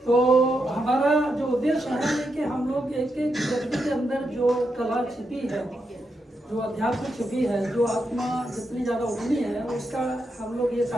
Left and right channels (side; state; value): both; normal; correlation 0.84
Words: तो हमारा जो उद्देश्य है कि हम लोग एक एक व्यक्ति के अंदर जो कला छिपी है, जो अध्यात्म छिपी है, जो आत्मा जितनी ज़्यादा उठनी है, उसका हम लोग ये